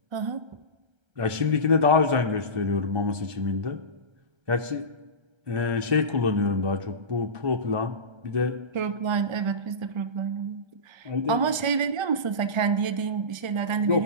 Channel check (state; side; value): late; left; 1.3 ms